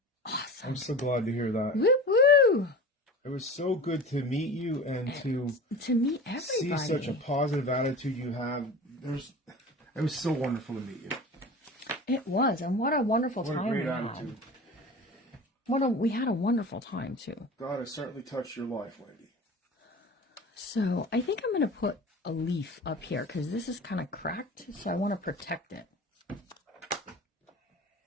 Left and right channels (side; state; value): both; normal; correlation 0.35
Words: awesome. I'm so glad to hear that. Woo woo! It was so good to meet you and to meet everybody. see such a positive attitude you have. It was so wonderful to meet you. It was, and what a wonderful What a time great we attitude. had. We had a wonderful time too. God has certainly touched your life, Wendy. So I think I'm going to put a leaf up here because this is kind of cracked, so I want to protect it.